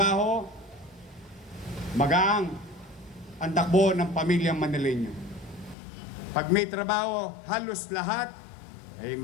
magaang ang takbo ng pamilyang Manileño. Pag may trabaho, halos lahat ay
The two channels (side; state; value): right; drops out; at 5.8 s